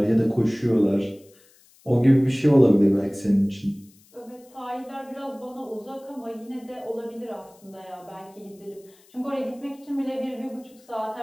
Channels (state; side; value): noise; left; hiss, 29 dB below the sound